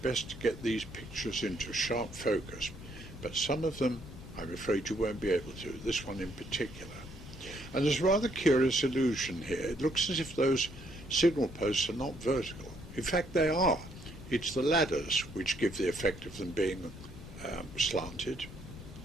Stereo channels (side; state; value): both; normal; correlation 0.70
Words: to get these pictures into sharp focus, but some of them, I'm afraid you won't be able to, this one in particular. And there's a rather curious illusion here. It looks as if those signal posts are not vertical. In fact, they are. It's the ladders which give the effect of them being slanted.